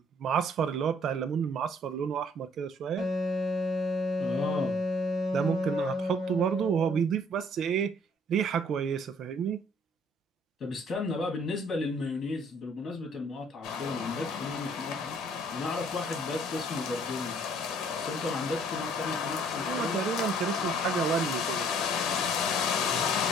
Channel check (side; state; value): both; normal; correlation 0.59